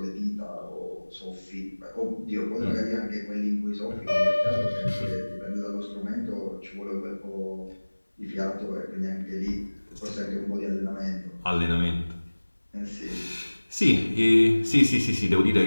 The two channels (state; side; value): inverted; both; correlation -1.00